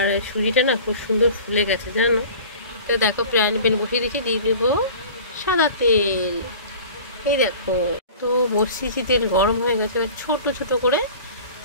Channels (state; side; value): inverted; both; correlation -0.41